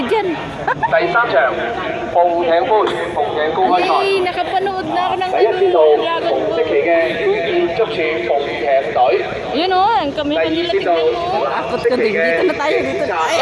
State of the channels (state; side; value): identical; both; correlation 1.00